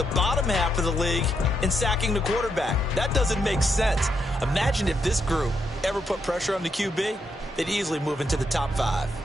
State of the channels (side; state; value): both; normal; correlation 0.79